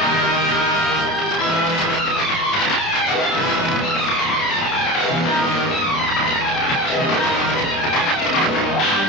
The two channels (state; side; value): noise; right; rumble, 27 dB below the sound